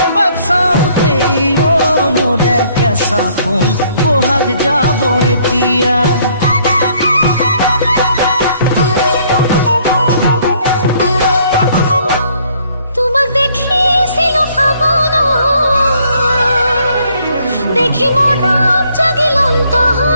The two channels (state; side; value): inverted; both; correlation -0.64